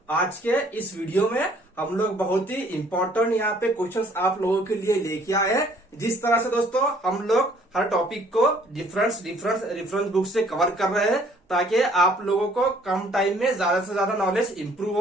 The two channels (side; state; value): both; normal; correlation 0.59